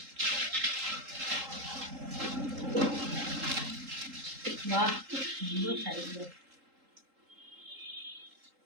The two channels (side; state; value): left; late; 3.8 ms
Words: বাহ, খুব সুন্দর শাড়িগুলো।